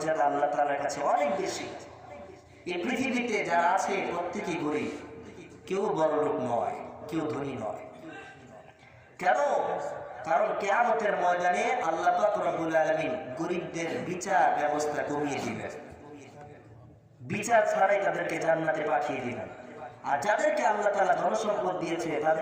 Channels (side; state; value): both; identical; correlation 1.00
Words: আল্লাহ তাআলার কাছে অনেক বেশি। এই পৃথিবীতে যারা আছে প্রত্যেকেই গরিব, কেউ বড়লোক নয়, কেউ ধনী নয়। কেন? কারণ কিয়ামতের ময়দানে আল্লাহ পাক রব্বুল আলামিন গরিবদের বিচার ব্যবস্থা কমিয়ে দিবেন। বিচার ছাড়াই তাদেরকে জান্নাতে পাঠিয়ে দিবেন। আর যাদেরকে আল্লাহ তাআলা ধন সম্পদ দিয়েছে